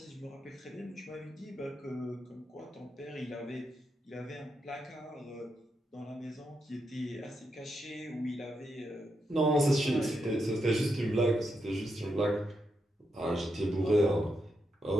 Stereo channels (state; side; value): normal; both; correlation 0.83